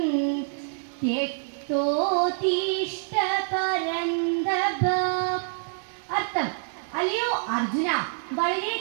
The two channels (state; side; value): silent; left; digital silence